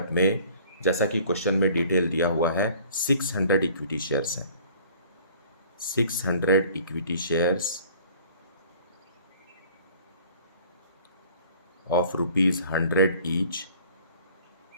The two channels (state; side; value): inverted; both; correlation -0.51